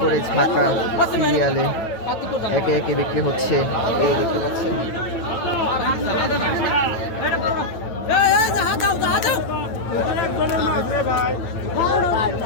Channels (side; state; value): right; late; 9.0 ms